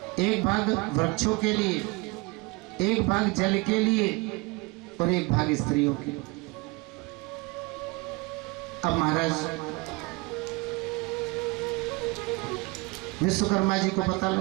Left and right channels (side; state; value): left; quieter; 25.9 dB